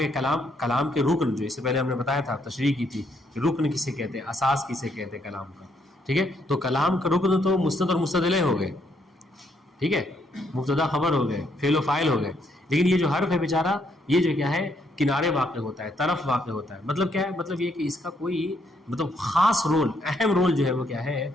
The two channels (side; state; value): both; normal; correlation 0.73